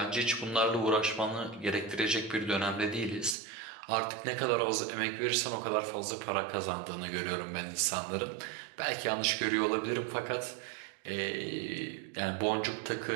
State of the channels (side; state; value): left; drops out; at 3.4 s